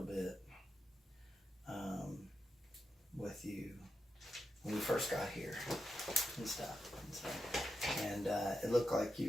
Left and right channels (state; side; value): normal; both; correlation 0.87